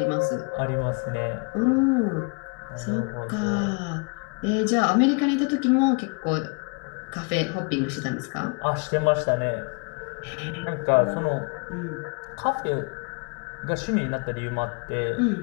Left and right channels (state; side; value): quieter; right; 35.0 dB